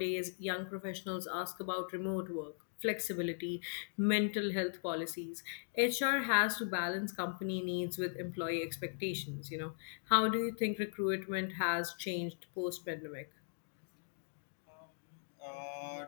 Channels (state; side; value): silent; right; digital silence